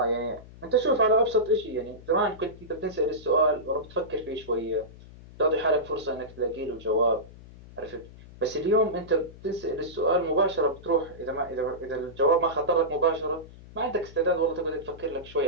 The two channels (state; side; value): noise; left; hum, 19 dB below the sound